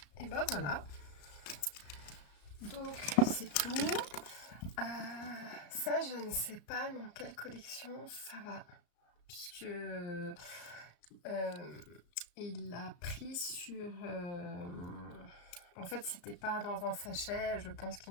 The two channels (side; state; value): right; late; 34 ms